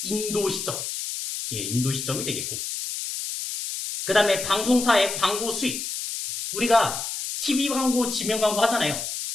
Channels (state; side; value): noise; left; hiss, 5 dB below the sound